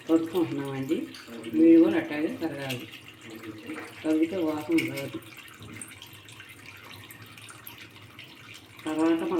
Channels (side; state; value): both; identical; correlation 1.00